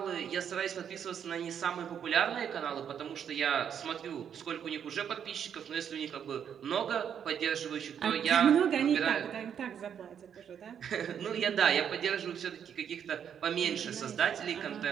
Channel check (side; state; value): left; quieter; 8.4 dB